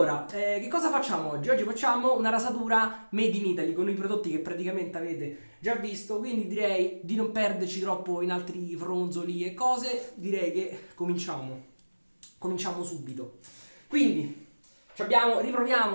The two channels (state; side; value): inverted; both; correlation -1.00